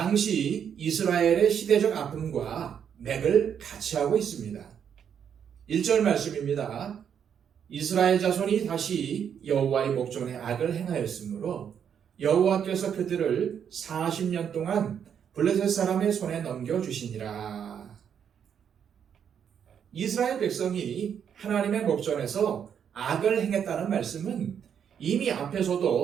이스라엘의 시대적 아픔과 맥을 같이 하고 있습니다. 1절 말씀입니다. 이스라엘 자손이 다시 여호와의 목전에 악을 행하였으므로 여호와께서 그들을 40년 동안 블레셋 사람의 손에 넘겨주시니라. 이스라엘 백성이 하나님의 목전에서 악을 행했다는 말씀은 이미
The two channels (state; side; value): quieter; left; 8.1 dB